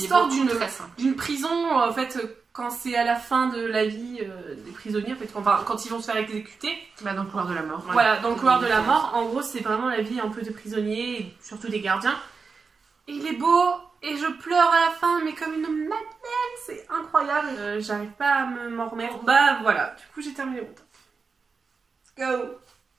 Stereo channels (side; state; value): left; quieter; 4.9 dB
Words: d'une prison, en fait, quand c'est à la fin de la vie des prisonniers, en fait, quand ils vont se faire exécuter. Bah, dans le couloir de la mort. Voilà, dans le couloir de la mort. En gros, c'est vraiment la vie un peu des prisonniers, et surtout des gardiens. Et il est beau, et je pleure à la fin, mais comme une madeleine, c'est incroyable. J'arrive pas à m'en remettre. Bah voilà, du coup j'ai terminé mon top. Let's go.